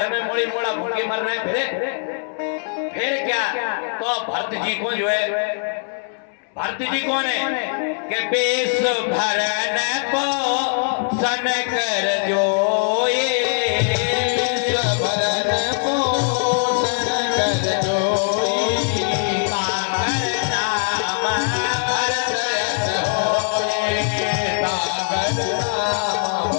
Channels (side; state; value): right; silent; 65 dB below the other